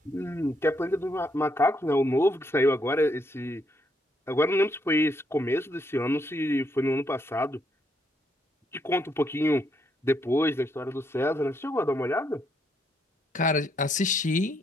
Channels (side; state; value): both; normal; correlation 0.75